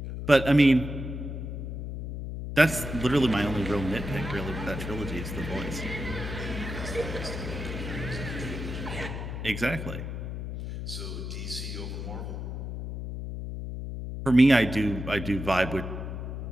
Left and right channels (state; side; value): noise; left; hum, 6 dB below the sound